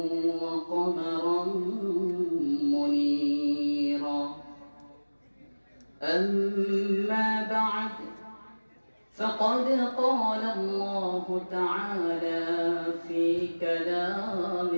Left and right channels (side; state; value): both; inverted; correlation -1.00